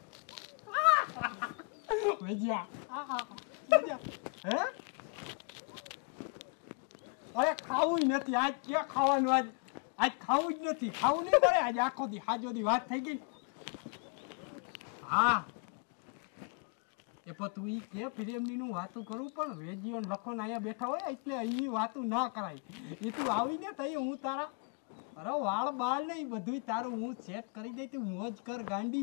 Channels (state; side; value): quieter; right; 38.2 dB